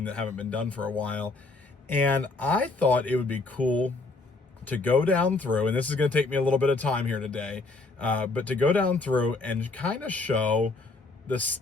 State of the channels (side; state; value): right; quieter; 3.5 dB